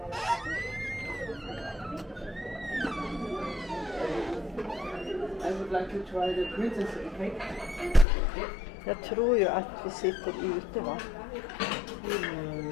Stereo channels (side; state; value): right; drops out; at 8.1 s